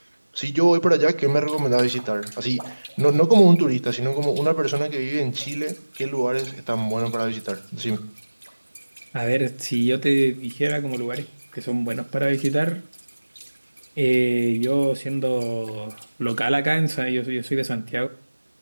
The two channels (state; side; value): inverted; both; correlation -1.00